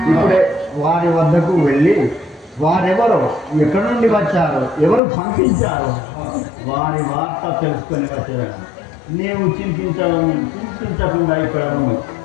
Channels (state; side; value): drops out; right; at 5.0 s